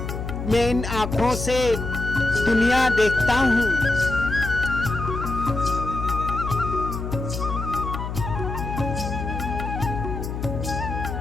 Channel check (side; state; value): left; noise; hum, 5 dB below the sound